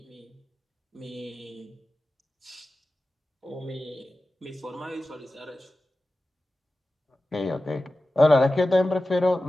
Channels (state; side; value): normal; both; correlation 0.95